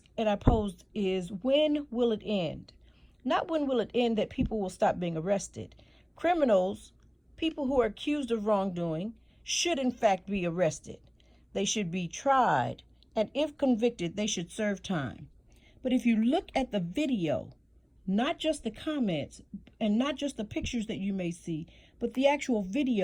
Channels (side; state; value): both; identical; correlation 1.00